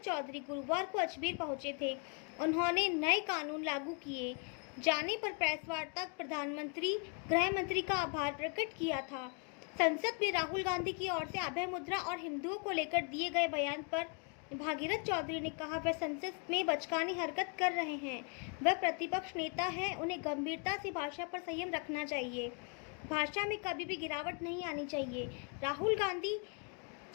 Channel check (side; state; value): right; quieter; 39.4 dB